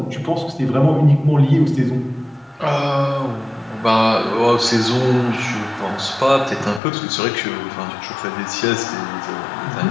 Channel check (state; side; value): drops out; right; at 6.8 s